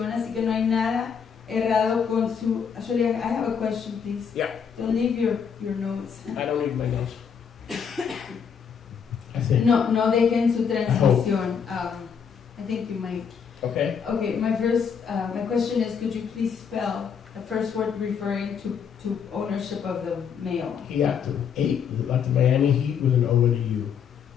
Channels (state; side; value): quieter; right; 7.0 dB